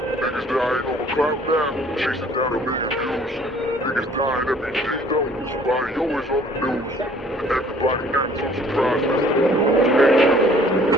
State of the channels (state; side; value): normal; both; correlation 0.56